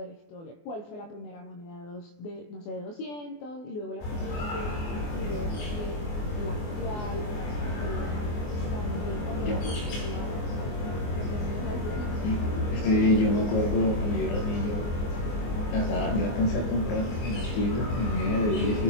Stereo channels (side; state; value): right; late; 24 ms